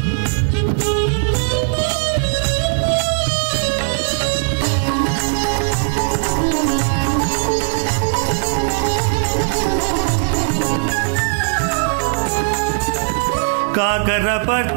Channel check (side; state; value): left; silent; digital silence